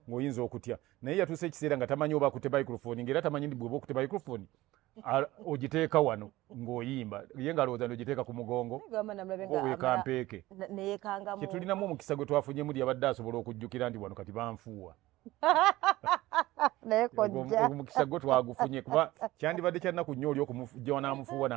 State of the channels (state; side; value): quieter; left; 17.7 dB